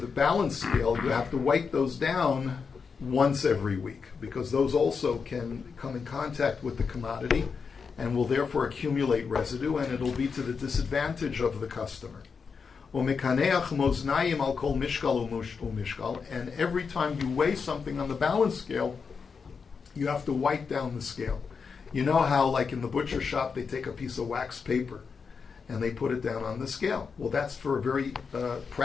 balance scale, you have to wipe those down once every week because those also can come in contact with the commodity and will therefore accumulate residue, and it'll be to the disadvantage of the customer. And every time you weigh something on the balance scale, you have to wipe down the scale. You know how, like in the butcher shop, they take a piece of wax paper and they put it down on the scale. Well, that's for a very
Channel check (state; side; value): quieter; right; 5.6 dB